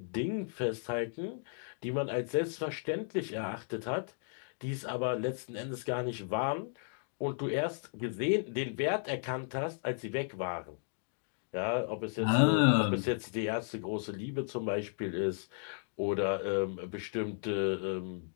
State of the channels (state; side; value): silent; right; digital silence